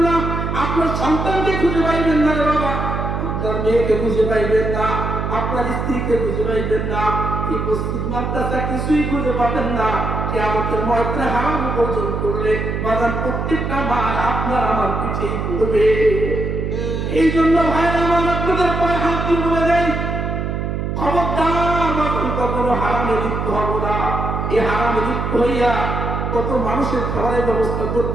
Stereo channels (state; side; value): noise; right; hum, 2 dB below the sound